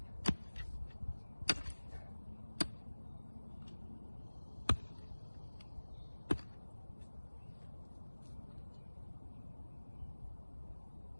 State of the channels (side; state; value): both; inverted; correlation -1.00